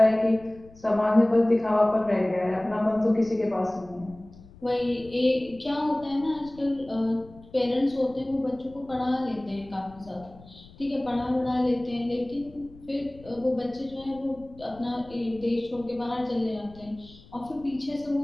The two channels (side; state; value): left; noise; rumble, 22 dB below the sound